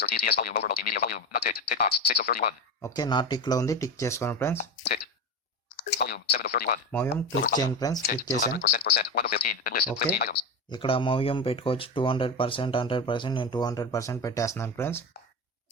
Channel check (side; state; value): both; normal; correlation 0.20